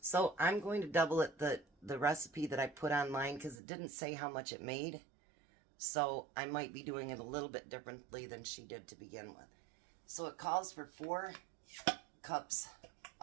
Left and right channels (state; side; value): drops out; left; at 3.6 s